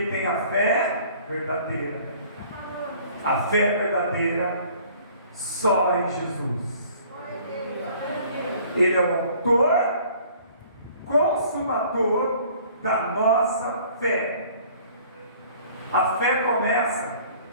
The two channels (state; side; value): inverted; both; correlation -0.53